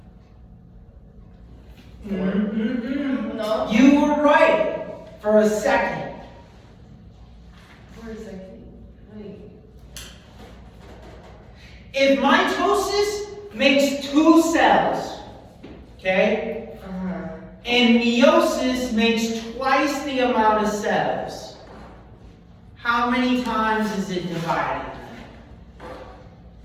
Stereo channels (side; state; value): both; identical; correlation 1.00